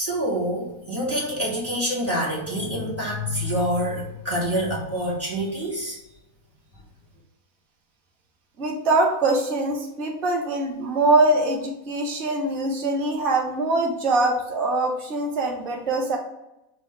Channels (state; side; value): late; right; 4.0 ms